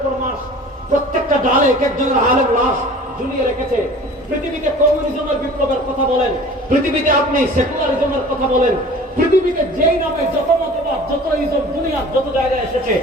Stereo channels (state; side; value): normal; both; correlation 0.44